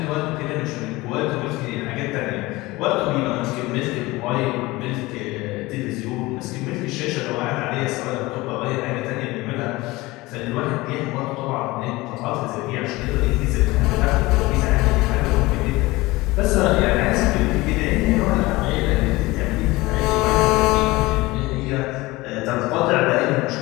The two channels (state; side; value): quieter; right; 20.7 dB